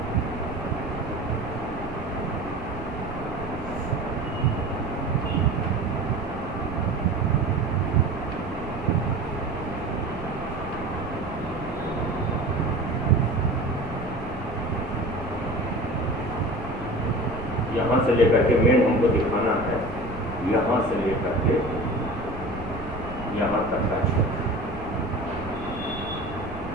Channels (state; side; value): noise; right; rumble, 11 dB below the sound